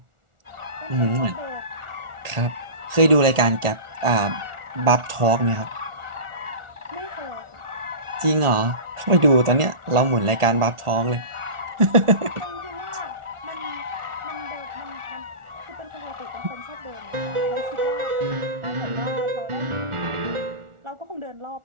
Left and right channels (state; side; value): late; left; 1.4 ms